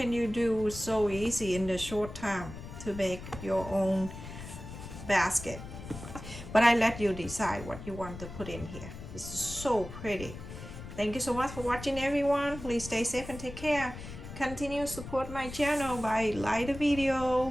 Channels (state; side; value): noise; left; rumble, 12 dB below the sound